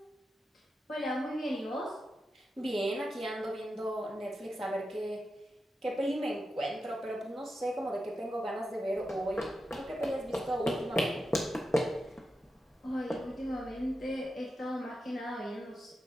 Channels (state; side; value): normal; both; correlation 0.89